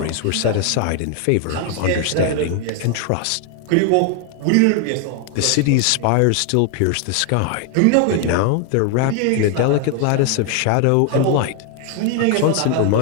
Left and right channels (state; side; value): different; both; correlation 0.00